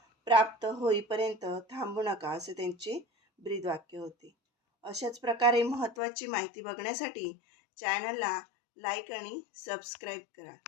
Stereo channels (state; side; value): drops out; right; at 6.0 s